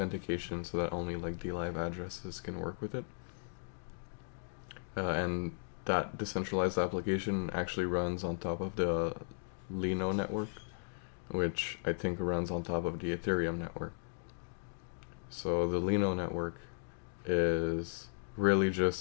so that only like DLive addresses can work with it. And that decentralized application actually runs on top of the Lino network, which I think runs on top of the Ethereum network. So the Lino network is really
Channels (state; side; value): silent; right; digital silence